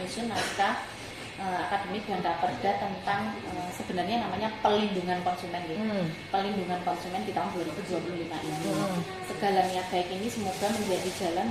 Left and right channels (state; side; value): identical; both; correlation 1.00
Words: naskah akademik dan raperda tentang sebenarnya namanya pelindungan konsumen gitu. Pelindungan konsumen di tahun 2025 ini. Segala niat baik ini semoga menjadi jalan